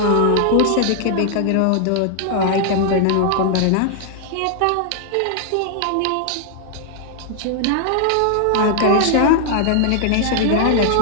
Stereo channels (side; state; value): both; different; correlation 0.00